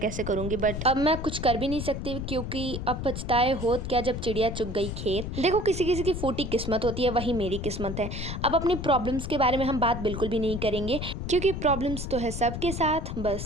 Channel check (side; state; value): left; noise; rumble, 5 dB below the sound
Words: करूँगी, बट अब मैं कुछ कर भी नहीं सकती क्योंकि अब पछताए होत क्या जब चिड़िया चुग गई खेत। देखो किसी किसी की फूटी किस्मत होती है, वही मेरी किस्मत है। अब अपनी प्रॉब्लम्स के बारे में हम बात बिल्कुल भी नहीं करेंगे क्योंकि प्रॉब्लम्स तो है सबके साथ,